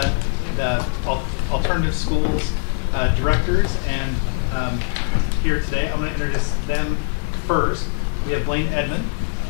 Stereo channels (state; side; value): silent; right; digital silence